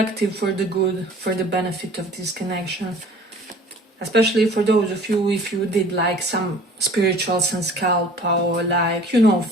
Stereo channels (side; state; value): both; normal; correlation 0.48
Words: for the good, for the benefit of this connection. Especially for those of you, if you did like some spirituals and scalp, or like, you know,